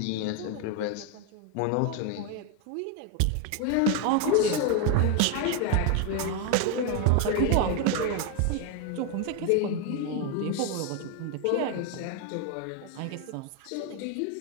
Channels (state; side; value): different; both; correlation 0.01